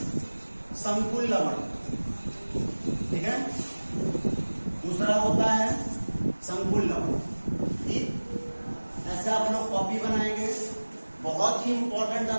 संकुल लवण। ठीक है, दूसरा होता है संकुल लवण। ठीक, ऐसे आप लोग कॉपी बनाएंगे। बहुत ही इंपॉर्टेंट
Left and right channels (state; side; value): inverted; both; correlation -1.00